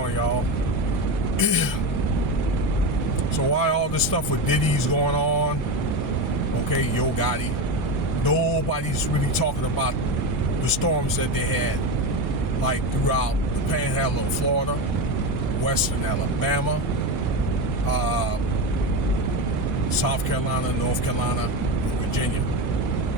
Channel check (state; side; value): normal; both; correlation 0.17